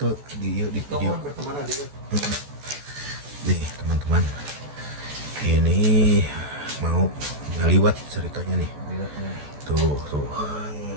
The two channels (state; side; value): late; left; 14 ms